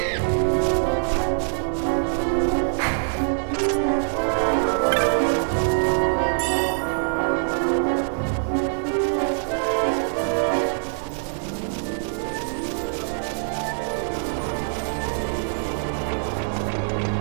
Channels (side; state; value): left; silent; digital silence